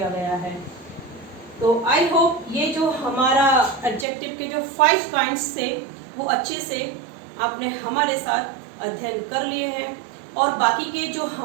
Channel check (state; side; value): drops out; left; at 4.0 s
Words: गया है। तो आई होप ये जो हमारा एडजेक्टिव के जो 5 काइंड्स थे वो अच्छे से आपने हमारे साथ अध्ययन कर लिए हैं, और बाकी के जो